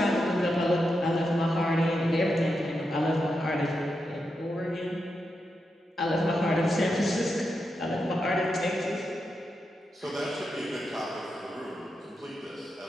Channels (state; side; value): normal; both; correlation 0.86